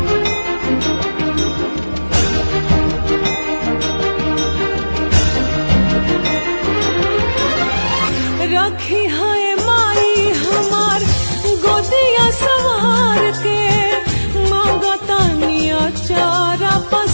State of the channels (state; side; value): inverted; both; correlation -1.00